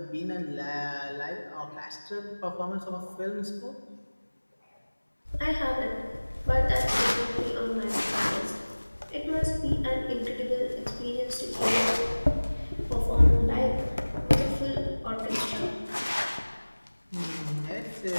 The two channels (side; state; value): both; inverted; correlation -1.00